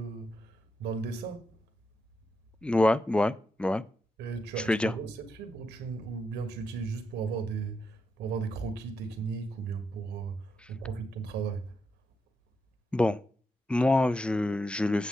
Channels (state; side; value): normal; both; correlation 0.84